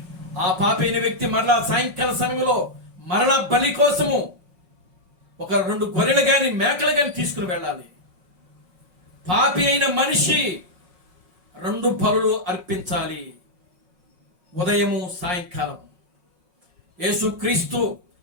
ఆ పాపి అయిన వ్యక్తి మరలా సాయంకాల సమయంలో మరలా బలి కోసము ఒక 2 గొర్రెలు కానీ మేకలు కానీ తీసుకుని వెళ్ళాలి. పాపి అయిన మనిషి 2 బలులు అర్పించాలి, ఉదయము సాయంకాలం. యేసుక్రీస్తు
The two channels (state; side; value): late; left; 5.5 ms